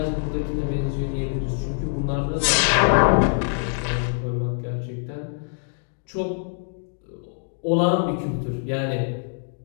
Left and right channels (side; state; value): right; silent; digital silence